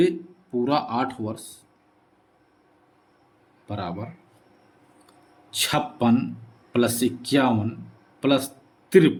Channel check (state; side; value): identical; both; correlation 1.00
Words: 8 वर्ष बराबर 56 plus 51 plus